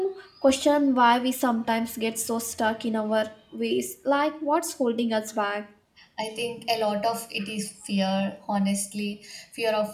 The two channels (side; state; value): both; identical; correlation 1.00